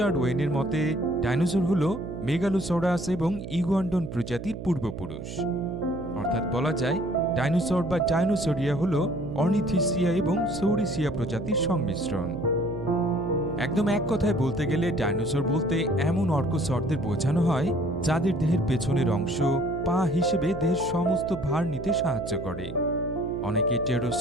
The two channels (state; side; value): noise; right; hum, 9 dB below the sound